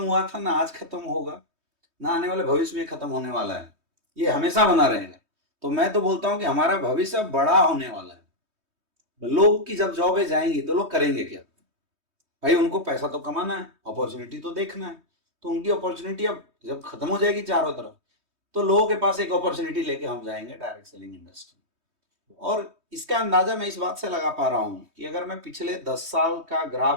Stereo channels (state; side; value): late; left; 3.2 ms